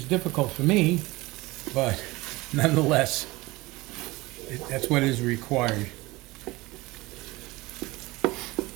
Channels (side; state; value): left; quieter; 21.3 dB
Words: difficult for me, but nonetheless, that's what is required. All